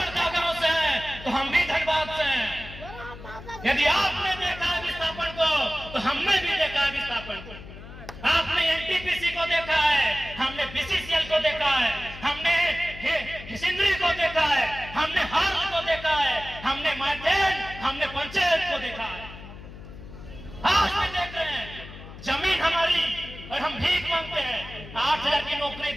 गांव से हैं तो हम भी धनबाद से हैं। यदि आपने देखा विस्थापन को तो हमने भी देखा विस्थापन को। आपने एनटीपीसी को देखा है, हमने बीसीसीएल को देखा है, हमने सिंदरी को देखा है, हमने हार्ल को देखा है, हमने मार्टेन, हमने पंचायत को देखा है। आज भी देख रहे हैं जमीन हमारी और हम भीख मांगते हैं। 8000 की नौकरी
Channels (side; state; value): left; noise; hum, 14 dB below the sound